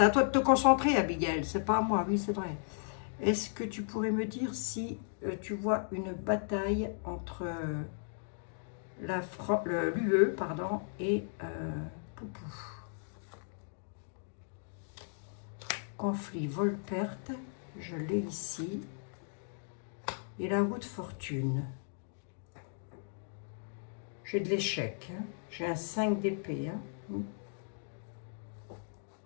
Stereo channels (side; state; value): right; silent; digital silence